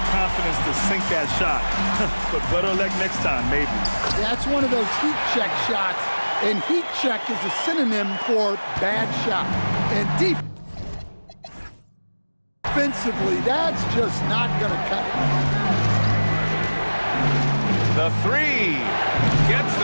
confidence to sink that shot, but better luck next time, maybe. That's one of those heat check shots, and heat check is a synonym for bad shot. And defensively, that's just not going to cut it. The 3 gets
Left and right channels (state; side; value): inverted; both; correlation -1.00